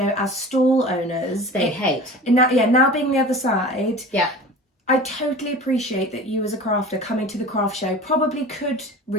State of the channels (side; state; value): both; normal; correlation 0.38